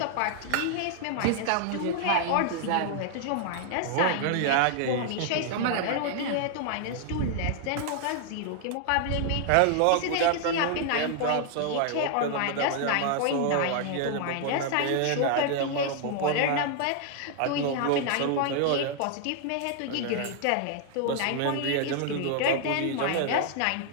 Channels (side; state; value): both; different; correlation 0.00